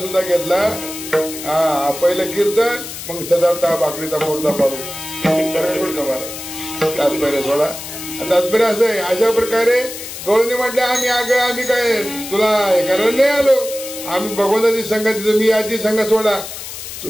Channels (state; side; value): noise; left; hiss, 10 dB below the sound